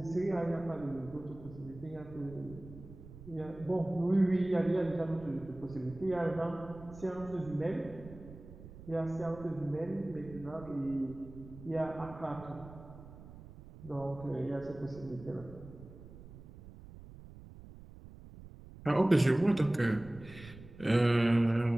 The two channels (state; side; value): noise; right; rumble, 17 dB below the sound